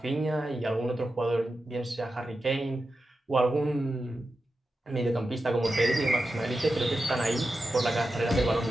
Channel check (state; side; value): normal; both; correlation 0.91